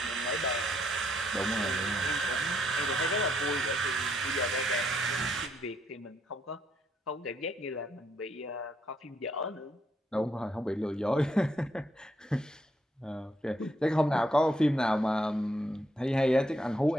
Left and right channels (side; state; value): both; normal; correlation 0.74